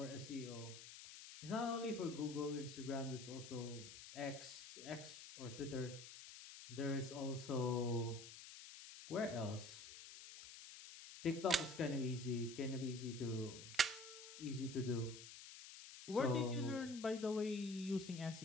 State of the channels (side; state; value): left; noise; hiss, 13 dB below the sound